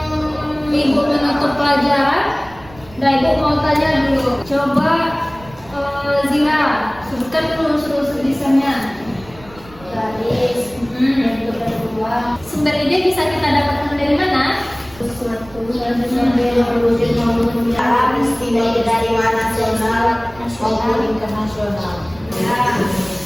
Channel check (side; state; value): right; noise; rumble, 21 dB below the sound